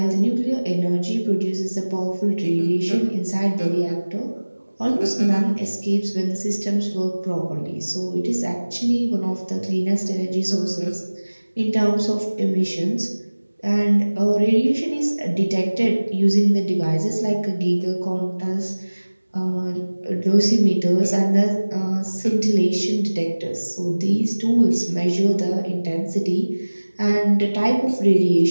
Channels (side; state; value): both; inverted; correlation -1.00